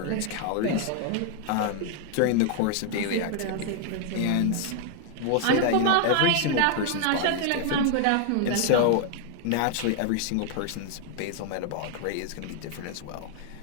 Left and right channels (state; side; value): different; both; correlation 0.00